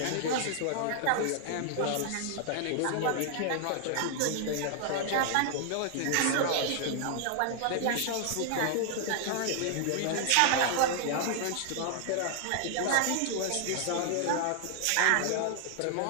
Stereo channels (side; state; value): both; different; correlation 0.00